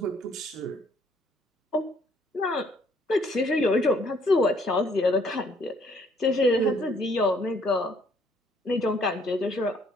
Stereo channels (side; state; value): both; normal; correlation 0.64